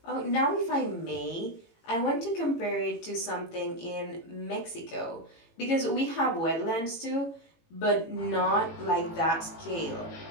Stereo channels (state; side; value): late; right; 18 ms